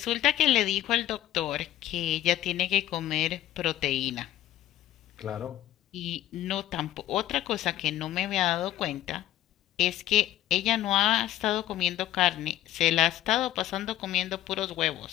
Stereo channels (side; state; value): right; quieter; 13.5 dB